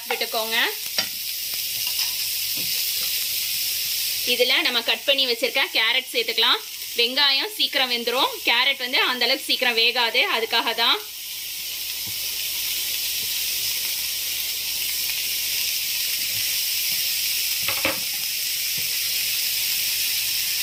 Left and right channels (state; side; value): identical; both; correlation 1.00